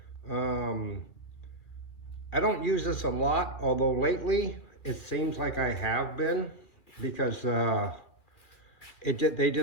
I don't use this a lot, although lately it seems like I have been, because they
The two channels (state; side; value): late; right; 2.4 ms